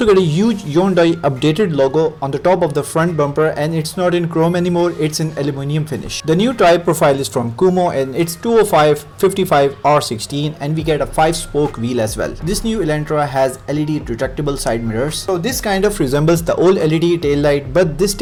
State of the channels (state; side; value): identical; both; correlation 1.00